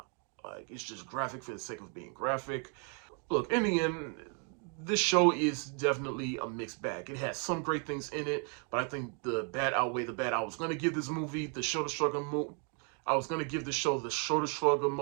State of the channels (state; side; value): quieter; left; 39.9 dB